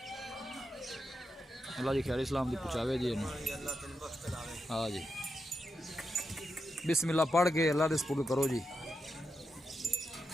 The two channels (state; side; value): normal; both; correlation 0.87